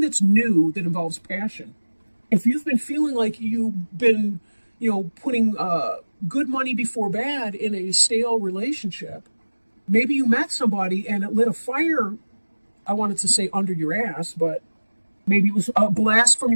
new that involves passion. If you've been feeling like you've been, putting good money before bad in a stale relationship, maybe you met somebody and it lit a fire, I wanted to say under your ass, but maybe it was a blast from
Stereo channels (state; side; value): inverted; both; correlation -1.00